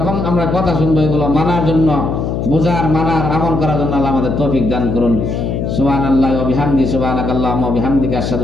আমরা কথা শুনবো এগুলো মানার জন্য, বুঝার, মানার, আমল করার জন্য আল্লাহ আমাদের তৌফিক দান করুন। সুবহানাল্লাহি ওয়া বিহামদিহি, সুবহানাকাল্লাহুম্মা ওয়া বিহামদিকা,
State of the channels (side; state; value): left; noise; hum, 2 dB below the sound